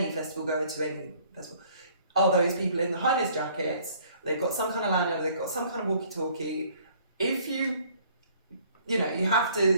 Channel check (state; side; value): inverted; both; correlation -0.59